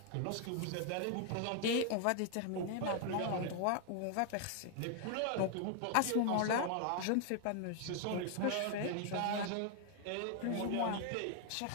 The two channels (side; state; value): both; different; correlation 0.00